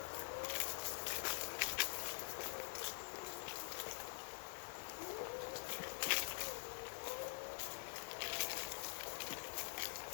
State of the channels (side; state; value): right; silent; digital silence